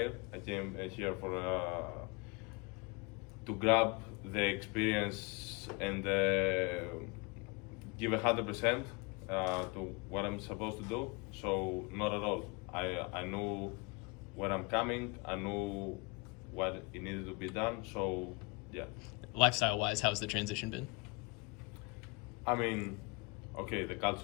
I came here to grab the experience and give 100% to what I'm supposed to do. So not at all. I knew where I'm coming. I knew what it needed to be done. So yeah. Lifestyle-wise, how's the transition been? I mean, okay, the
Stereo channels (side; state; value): right; quieter; 28.4 dB